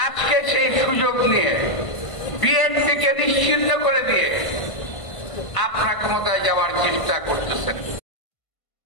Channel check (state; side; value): late; right; 1.5 ms